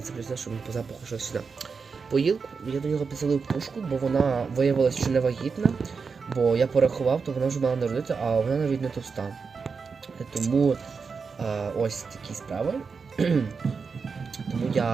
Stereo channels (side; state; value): left; quieter; 5.2 dB